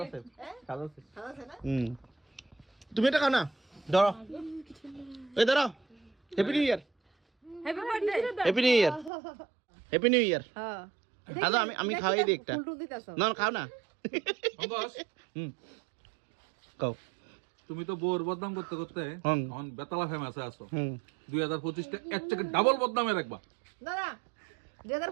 সাজাছে। তুমি এটা খাও না, ধরো। এই ধরো। Happy new year, happy new year, happy new year. আচ্ছা আমি খাওয়াই দিই একটা। না খাও না। খাও। তুমি তো বোর বদনাম করতে করতে এখন বেতালা ফেমাসে আছো। 2025টা এর থেকে ডাবল বদনামে রাখবা। দাদা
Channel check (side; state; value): left; drops out; at 9.1 s